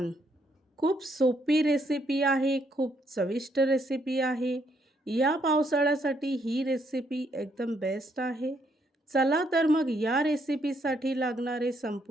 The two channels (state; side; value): normal; both; correlation 0.73